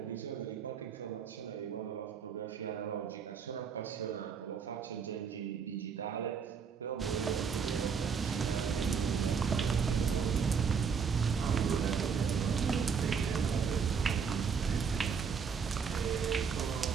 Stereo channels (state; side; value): quieter; left; 6.2 dB